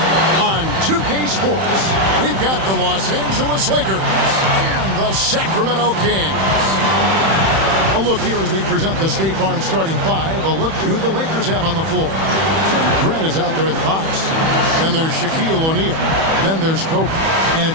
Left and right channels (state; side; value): late; left; 31 ms